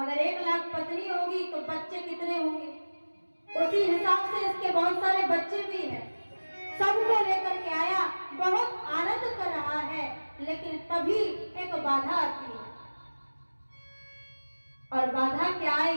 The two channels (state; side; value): inverted; both; correlation -1.00